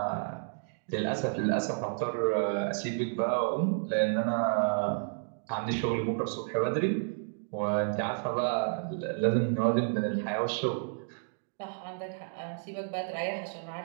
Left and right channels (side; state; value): left; silent; digital silence